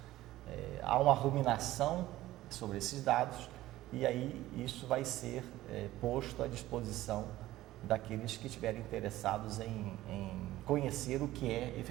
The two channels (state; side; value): quieter; left; 15.7 dB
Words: há uma ruminação sobre esses dados e aí isso vai ser posto à disposição daqueles que estiverem interessados em conhecer o que é